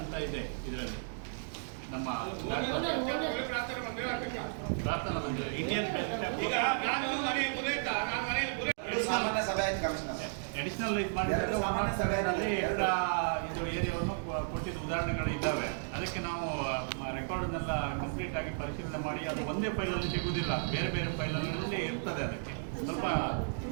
ಇದೆ ಇದರಲ್ಲಿ. ನಮ್ಮ ಪ್ರಾರ್ಥನಾ ಮಂದಿರ ಇಂಡಿಯನ್ ಅಡಿಷನಲ್ ಇದು ಮಾಡಿದ್ರೆ 107ರಲ್ಲಿ ಇದು ಏರಿಯಾವನ್ನು ಕೊಟ್ಟಿದ್ದ ಉದಾಹರಣೆಗಳು ಇದ್ದಾವೆ. ಅದಕ್ಕೆ ನಾವು ರೆಕಾರ್ಡ್ನೆಲ್ಲ ಕಂಪ್ಲೀಟ್ ಆಗಿ ಪರಿಶೀಲನೆ ಮಾಡಿ ಅದು ಒಂದೇ ಫೈಲಲ್ಲಿ ಸಿಗುವುದಿಲ್ಲ, ಬೇರೆ ಬೇರೆ ಫೈಲಲ್ಲಿ ಇರ್ತದೆ. ಅದಕ್ಕೆ ಸ್ವಲ್ಪ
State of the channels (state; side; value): silent; left; digital silence